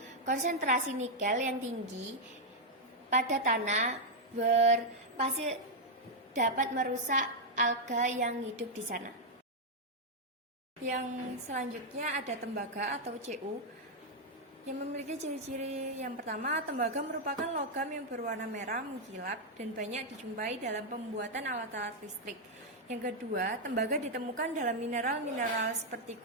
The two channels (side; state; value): both; normal; correlation -0.02